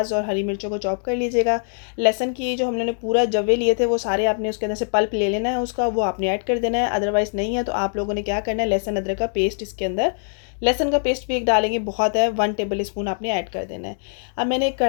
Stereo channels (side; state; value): right; silent; digital silence